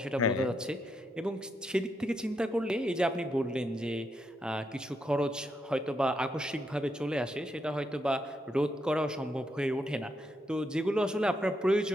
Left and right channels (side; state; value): both; normal; correlation 0.80